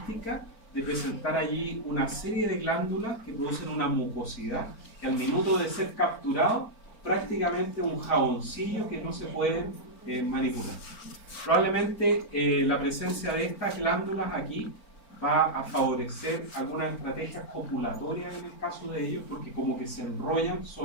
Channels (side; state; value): right; late; 4.4 ms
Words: de presentar allí una serie de glándulas que producen una mucosidad que al minuto de ser capturado prácticamente un jaboncillo que no se puede manipular. Probablemente la presencia de estas glándulas aquí va a favorecer algunas estrategias copulatorias en el caso de ellos, porque como que se enrollan